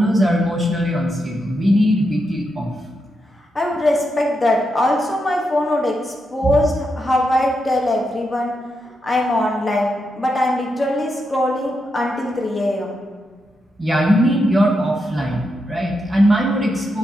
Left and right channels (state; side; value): normal; both; correlation 0.84